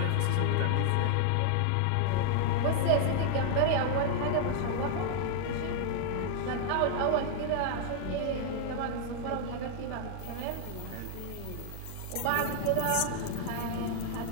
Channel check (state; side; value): different; both; correlation -0.01